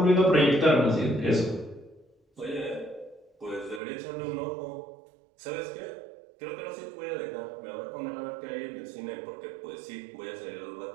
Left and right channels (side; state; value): left; drops out; at 3.8 s